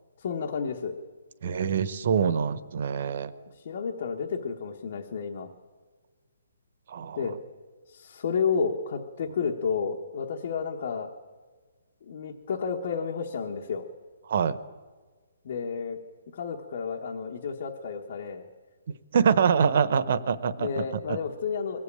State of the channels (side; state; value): both; inverted; correlation -0.65